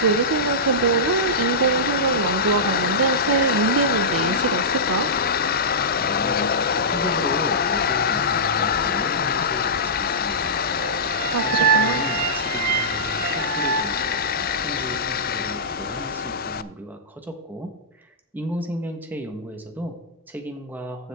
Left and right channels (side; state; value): both; normal; correlation -0.16